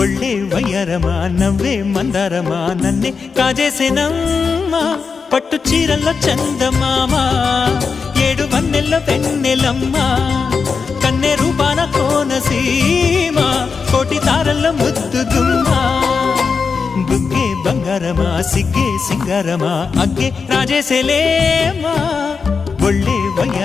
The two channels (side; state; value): right; quieter; 5.3 dB